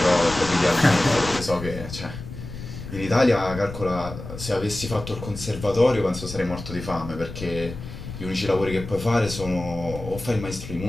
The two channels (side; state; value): left; noise; rumble, 11 dB below the sound